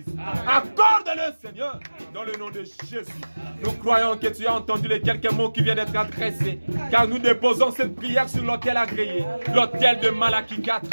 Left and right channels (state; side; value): inverted; both; correlation -1.00